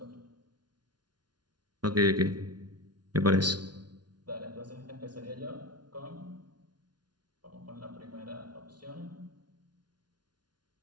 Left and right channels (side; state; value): left; late; 0.70 ms